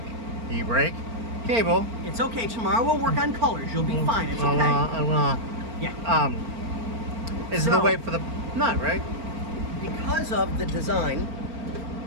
cable. It's okay. Tomorrow we'll work on colors. You'll be fine. It's okay. Yeah. Is the way for the nut, right? Because of the design,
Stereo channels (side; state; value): left; late; 4.4 ms